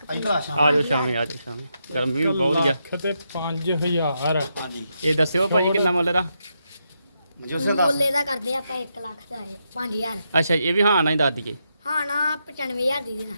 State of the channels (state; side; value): inverted; both; correlation -0.82